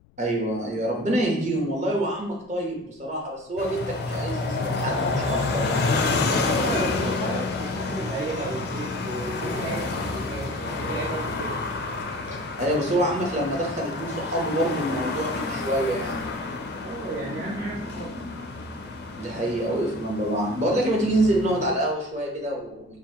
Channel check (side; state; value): left; noise; rumble, 30 dB below the sound